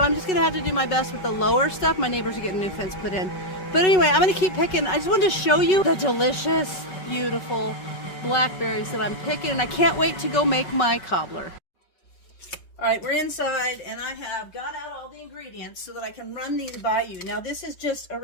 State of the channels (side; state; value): right; late; 5.4 ms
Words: I'm just going to have to do my best with the lower stuff. My neighbors are getting new fence put in. But anyway, I'm going to keep picking. I just wanted to show you the delicious, beautiful blackberries that I'm picking. And I can't wait to go make my cobbler. All right, we're inside and I have got out all the ingredients so that I can run these by you. Now this is just a